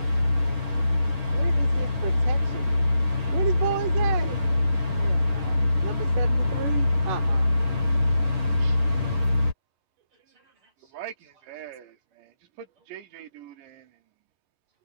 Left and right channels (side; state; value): left; late; 11 ms